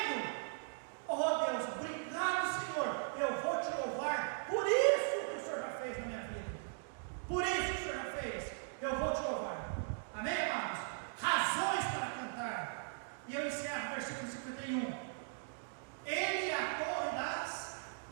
Oh Deus, obrigado, Senhor, eu vou te louvar por isso que o Senhor já fez na minha vida. Por isso que o Senhor já fez, eu vou te louvar. Amém, amados? Razões para cantar. E eu encerro o versículo 51. Ele é a torre das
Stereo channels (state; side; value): silent; left; digital silence